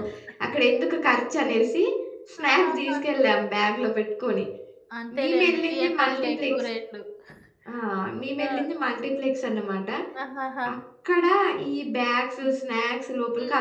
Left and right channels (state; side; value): identical; both; correlation 1.00